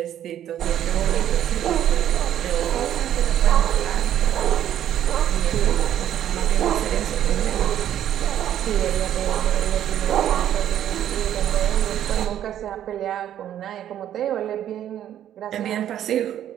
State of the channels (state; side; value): quieter; left; 11.0 dB